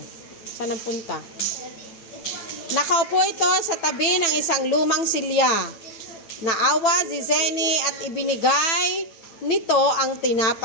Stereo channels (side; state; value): right; late; 9.1 ms